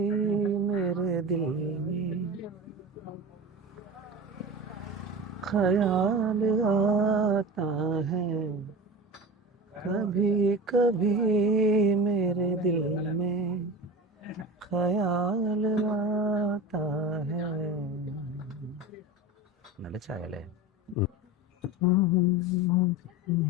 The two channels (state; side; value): normal; both; correlation 0.30